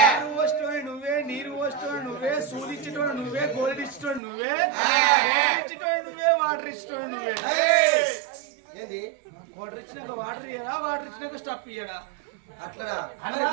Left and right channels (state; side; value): drops out; left; at 4.2 s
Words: నువ్వు వస్తువు నువ్వే, నీరు వస్తువు నువ్వే, సూదిచ్చేటోడు నువ్వే, గోల్డ్ ఇచ్చేటోడు నువ్వే, ఇచ్చేటోడు నువ్వే, వాటర్ ఇచ్చేటోడు నువ్వే. ఏంది వాటర్ ఇచ్చినాక వాటర్ ఇయ్యడా, వాటర్ ఇచ్చినాక స్టఫ్ ఇయ్యడా? అట్లనా?